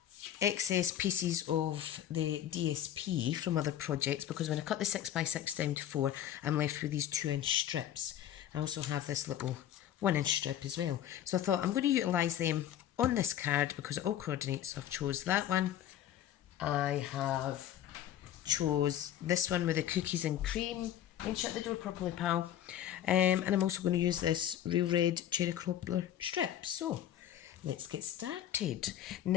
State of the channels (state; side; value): quieter; right; 11.2 dB